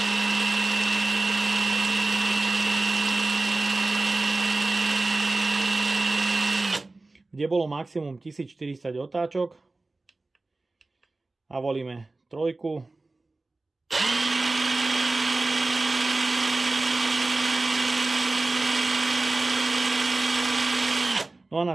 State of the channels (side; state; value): left; quieter; 3.2 dB